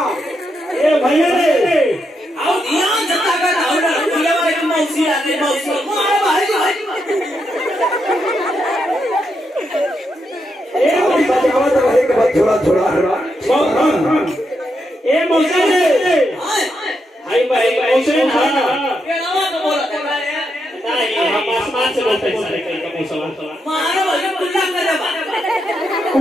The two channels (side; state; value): both; normal; correlation 0.82